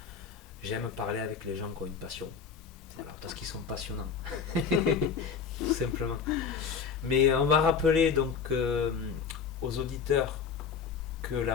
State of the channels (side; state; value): right; quieter; 6.4 dB